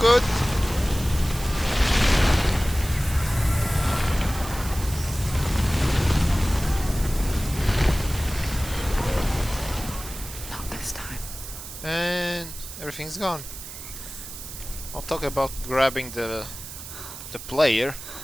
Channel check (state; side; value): noise; right; hiss, 11 dB below the sound